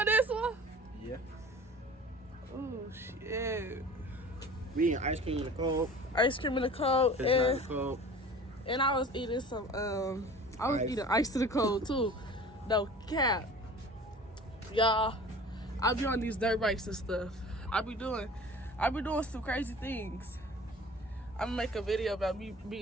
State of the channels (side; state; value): both; normal; correlation 0.42